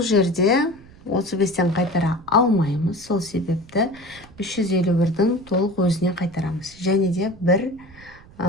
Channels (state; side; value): noise; right; rumble, 23 dB below the sound